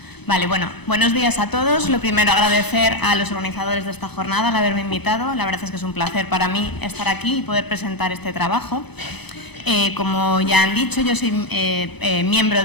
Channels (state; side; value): late; right; 0.99 ms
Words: Vale, bueno, buenos días a todos. Lo primero, agradecer a los organizadores de esta jornada al haberme invitado. La verdad es que es un placer para mí estar aquí y poder presentar este trabajo. Como ya han dicho, yo soy miembro